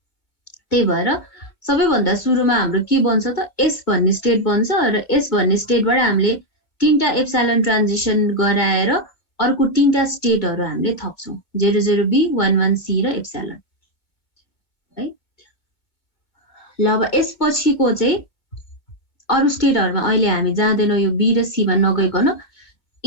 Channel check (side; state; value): right; late; 2.1 ms